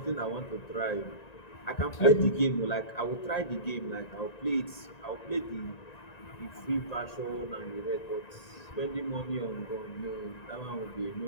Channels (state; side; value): late; right; 1.9 ms